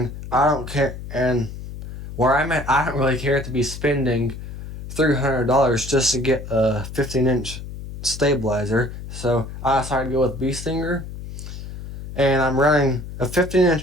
I don't care. And where I'm at, I don't really care to be spending $300 just to get a 15-inch stabilizer. So I decided to go with Bee Stinger, and I'm running a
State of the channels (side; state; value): left; noise; hum, 10 dB below the sound